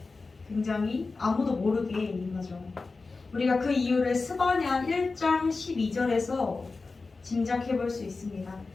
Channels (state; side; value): quieter; right; 3.9 dB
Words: 굉장히 아무도 모르게 임하죠. 우리가 그 이유를 스바냐 1장 12절에서 짐작해 볼 수 있습니다.